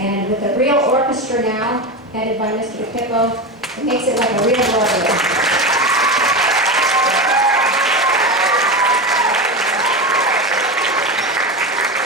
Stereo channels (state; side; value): normal; both; correlation 0.20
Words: with a real orchestra now, headed by Mr. DePippo, it makes it like a real Broadway.